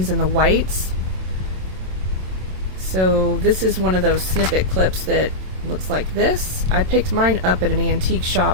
and the whites. So this is one of those snippet clips that looks like this. I picked mine up at an antique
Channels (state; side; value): late; left; 27 ms